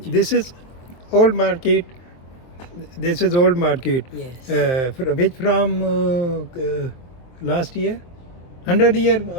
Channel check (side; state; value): right; late; 23 ms